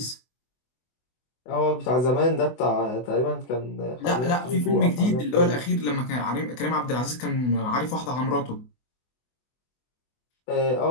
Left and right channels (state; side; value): late; right; 24 ms